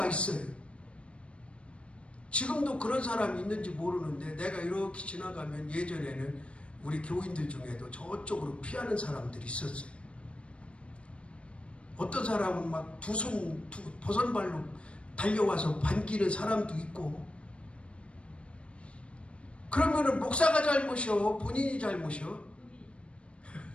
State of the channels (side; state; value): right; late; 0.060 ms